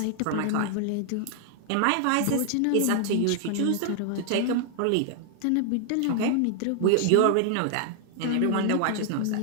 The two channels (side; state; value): both; different; correlation 0.00